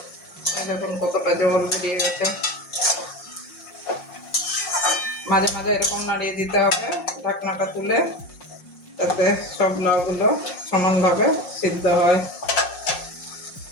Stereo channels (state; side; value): late; right; 5.6 ms